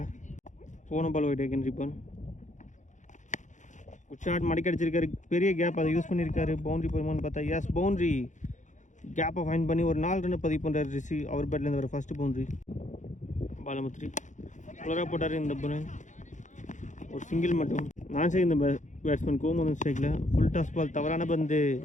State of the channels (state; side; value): late; right; 0.36 ms